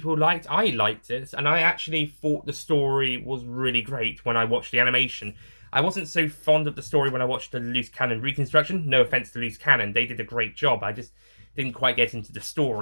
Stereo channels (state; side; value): inverted; both; correlation -1.00